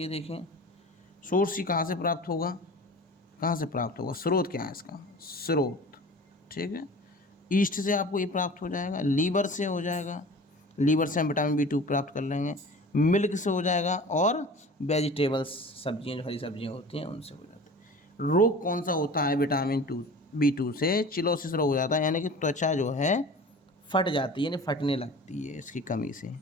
देखें सोर्स ही कहाँ से प्राप्त होगा, कहाँ से प्राप्त होगा, स्रोत क्या है इसका, स्रोत, ठीक है। ईस्ट से आपको ये प्राप्त हो जाएगा, लीवर से हो जाएगा, लीवर से हम विटामिन B2 प्राप्त कर लेंगे, मिल्क से हो जाएगा, और वेजिटेबल्स सब्जियां, जो हरी सब्जियां होती हैं उनसे हो जाता है। रोग कौन सा होता है विटामिन B2 से, चिलोसिस रोग हो जाता है, यानी कि त्वचा जो है फट जाती है, यानी फटने लगती है इसकी कमी से,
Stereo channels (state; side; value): normal; both; correlation 0.39